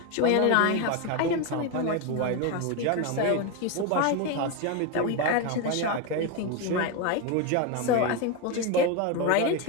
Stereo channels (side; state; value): both; different; correlation 0.03